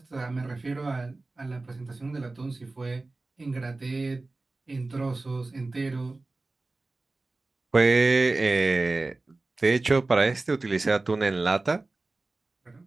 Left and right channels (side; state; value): left; quieter; 3.3 dB